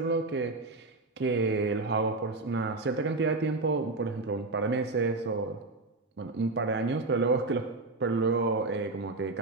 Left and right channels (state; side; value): quieter; left; 3.3 dB